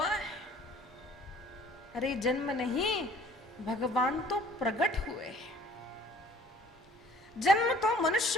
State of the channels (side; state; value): both; normal; correlation 0.54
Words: है। अरे जन्म नहीं, भगवान तो प्रकट हुए। जन्म तो